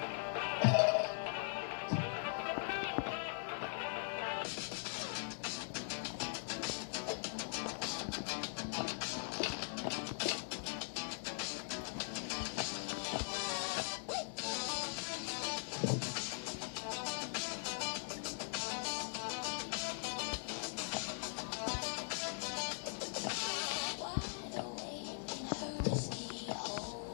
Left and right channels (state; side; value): silent; right; digital silence